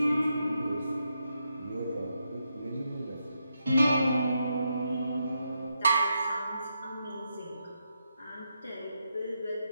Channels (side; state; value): both; inverted; correlation -0.83